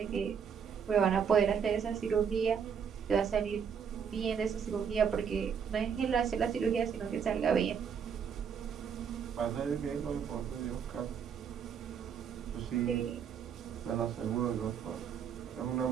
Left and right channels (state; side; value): quieter; left; 7.2 dB